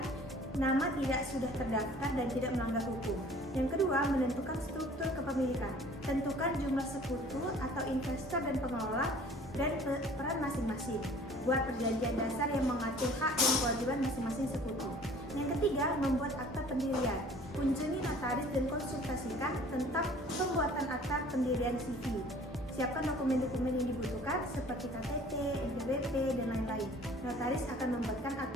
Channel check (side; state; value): both; normal; correlation 0.51